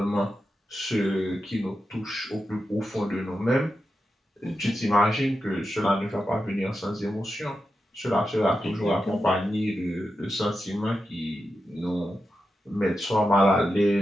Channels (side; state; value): both; normal; correlation 0.89